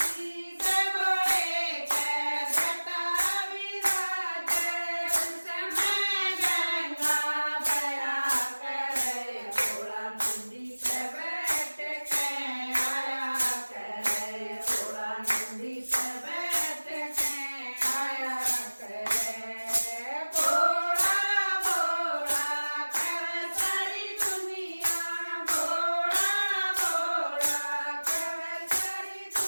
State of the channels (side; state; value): both; inverted; correlation -1.00